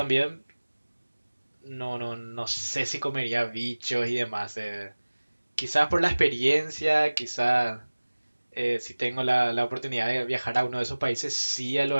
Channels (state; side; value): inverted; both; correlation -1.00